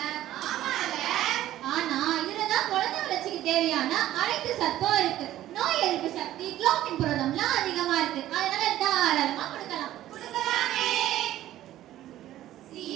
ஆனா இதுலதான் குழந்தை வளர்ச்சிக்கு தேவையான அனைத்து சத்தும் இருக்கு. நோய் எதிர்ப்பு சக்தி, குளோபின் புரதம்லாம் அதிகமா இருக்கு. அதனால தாராளமா கொடுக்கலாம்.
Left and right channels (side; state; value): left; quieter; 13.7 dB